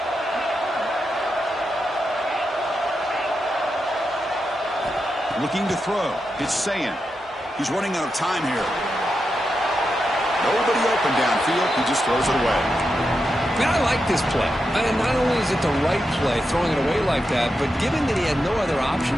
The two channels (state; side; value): normal; both; correlation 0.87